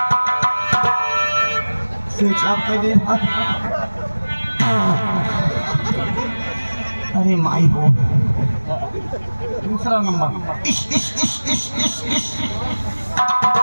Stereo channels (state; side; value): inverted; both; correlation -1.00